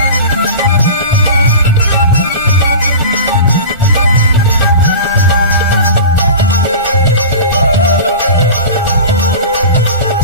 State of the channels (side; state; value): both; inverted; correlation -0.33